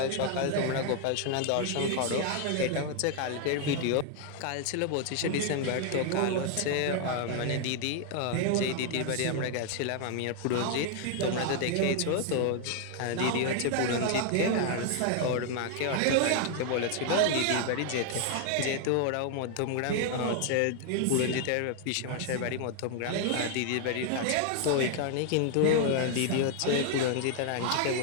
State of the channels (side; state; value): both; different; correlation 0.00